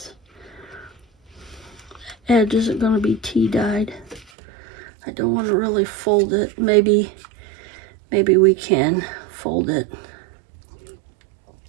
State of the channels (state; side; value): drops out; left; at 4.2 s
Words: Edge isn't going to be tea dyed. I don't want to really fold it. Maybe we can fold it.